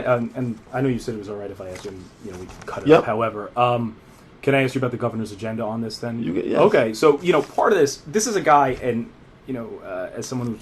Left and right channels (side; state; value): both; identical; correlation 1.00